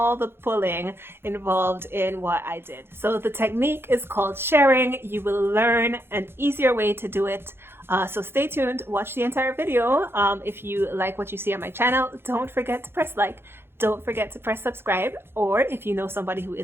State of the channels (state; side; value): late; left; 0.11 ms